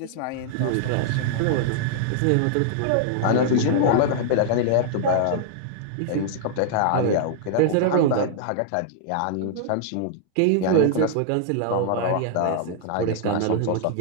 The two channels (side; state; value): both; different; correlation -0.01